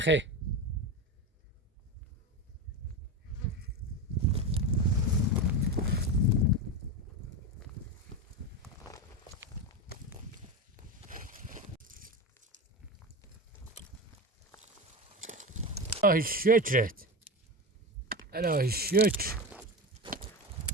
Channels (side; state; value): both; normal; correlation 0.20